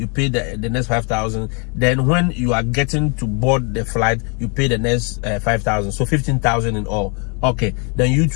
pay the next $5,000. Then when you are getting to board the flight, you pay the next $5,000. So $15,000 in all. Okay. Then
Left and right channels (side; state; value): right; quieter; 34.8 dB